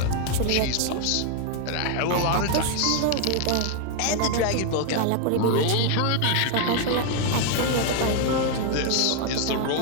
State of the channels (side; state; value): both; different; correlation 0.00